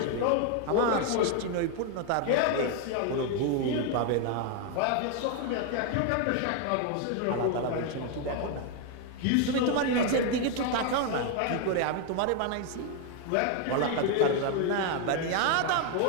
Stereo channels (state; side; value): different; both; correlation 0.01